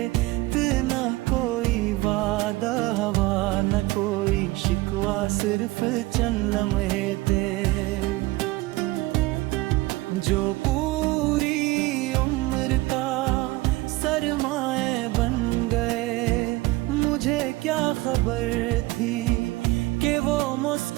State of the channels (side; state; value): left; quieter; 20.2 dB